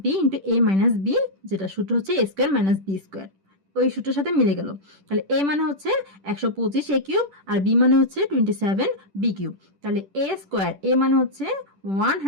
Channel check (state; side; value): late; left; 10 ms